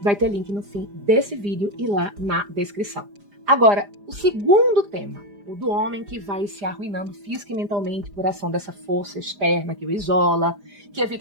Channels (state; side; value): late; left; 4.9 ms